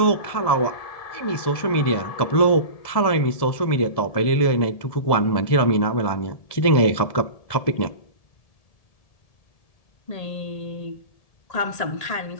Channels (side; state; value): right; late; 1.7 ms